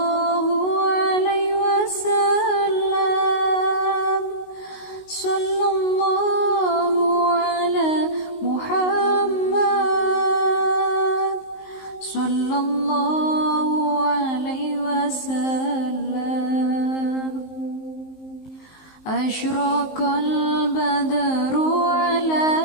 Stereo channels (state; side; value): late; right; 19 ms